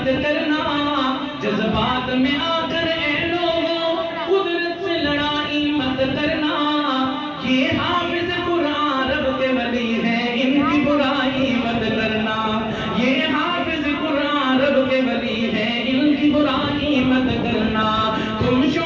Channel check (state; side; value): identical; both; correlation 1.00